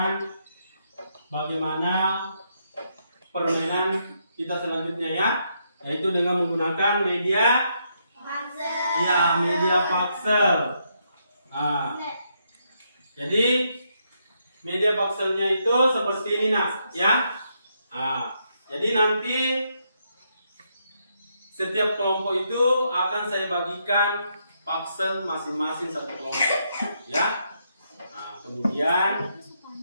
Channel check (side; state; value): both; inverted; correlation -0.77